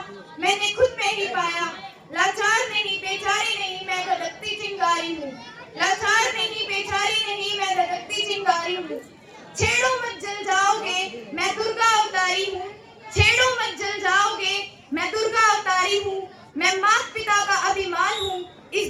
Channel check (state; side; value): identical; both; correlation 1.00